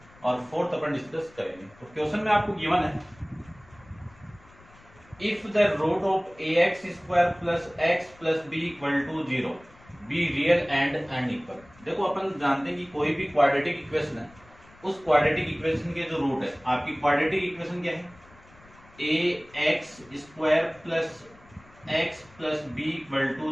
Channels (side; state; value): left; noise; rumble, 25 dB below the sound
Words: और 4 अपन डिस्कस करेंगे। तो क्वेश्चन में आपको गिवन है, if the root of ax square plus x plus b equal to 0 b real and unequal. देखो अपन जानते हैं कि कोई भी क्वाड्रेटिक इक्वेशन है, उस क्वाड्रेटिक इक्वेशन के जो रूट है, आपकी क्वाड्रेटिक इक्वेशन क्या है, ax square plus x plus b equal